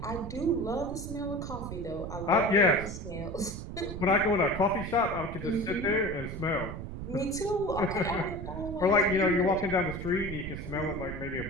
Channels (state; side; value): noise; right; rumble, 8 dB below the sound